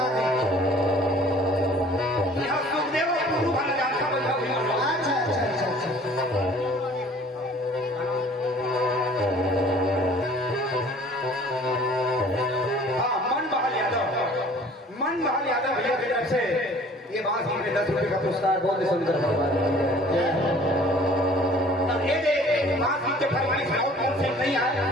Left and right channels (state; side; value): normal; both; correlation 0.51